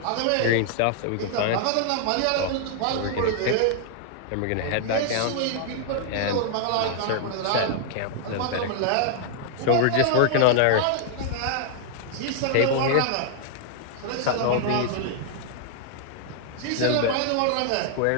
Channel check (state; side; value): different; both; correlation 0.00